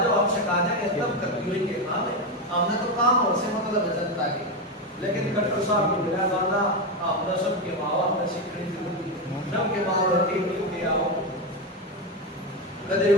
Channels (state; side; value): normal; both; correlation 0.11